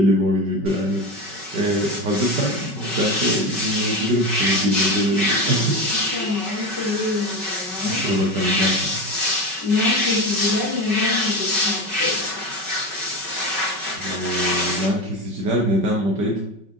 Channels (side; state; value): left; late; 5.3 ms